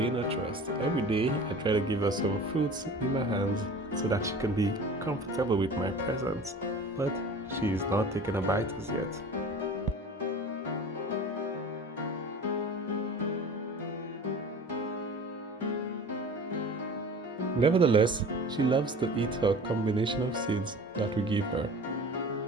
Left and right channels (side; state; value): both; normal; correlation 0.39